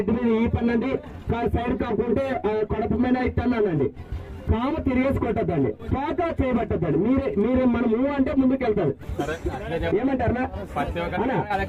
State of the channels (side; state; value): both; identical; correlation 1.00